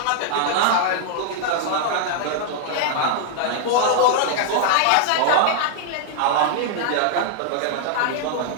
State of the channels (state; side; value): different; both; correlation -0.01